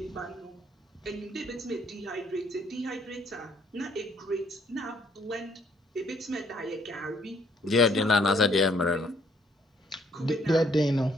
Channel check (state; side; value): normal; both; correlation 0.66